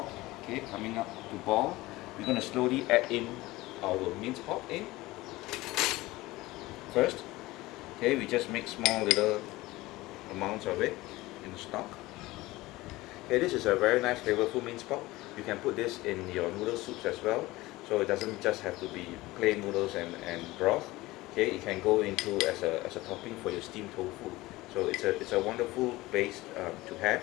okay, coming up to boil. We're going to slowly add in our minced pork in first. Okay, we just make small little amounts of it in the stock. Okay, this is a very nice flavorful minced pork. You can put this in your noodle soups as well, so it doesn't just have to be plain noodles and broth. Okay, it can go into as a topping for your steamed tofu. So it's a wonderful base to have.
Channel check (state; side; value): quieter; right; 19.4 dB